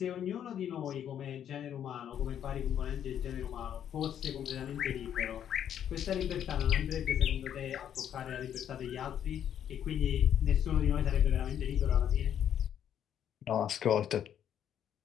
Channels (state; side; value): quieter; right; 9.7 dB